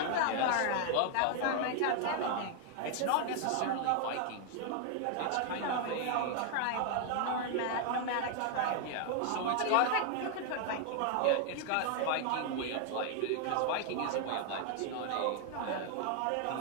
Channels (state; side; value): different; both; correlation 0.00